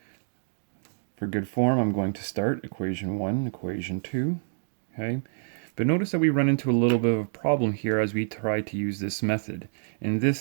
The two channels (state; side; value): silent; left; digital silence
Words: for good form, I'm going to start equation 1, equation 2. Okay? But notice that we run into a little bit of a problem here as we try to use this method. In